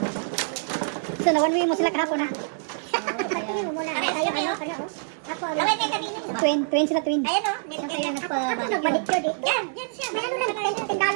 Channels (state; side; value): silent; left; digital silence